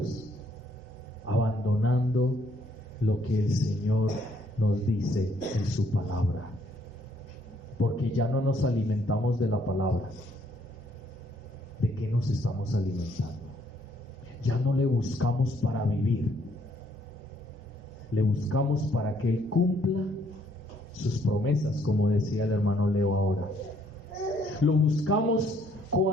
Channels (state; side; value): normal; both; correlation 0.67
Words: Abandonando lo que el Señor nos dice en su palabra. Porque ya no nos alimentamos de la palabra. ¿De qué nos estamos alimentando? Ya no le buscamos para vivir. Le buscamos para que Él cumpla sus promesas, como decía el hermano Leo ahora. Lo buscamos